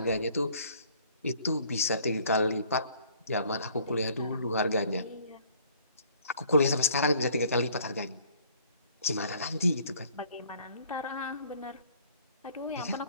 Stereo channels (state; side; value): inverted; both; correlation -0.57